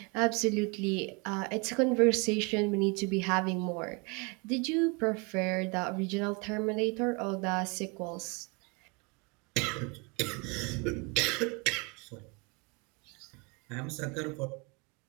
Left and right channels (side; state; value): left; quieter; 30.4 dB